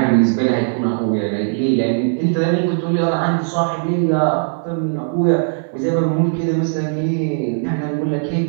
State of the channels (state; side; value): silent; left; digital silence